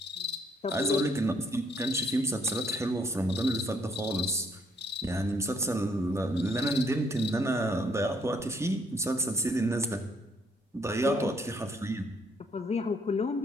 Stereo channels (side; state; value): both; normal; correlation 0.69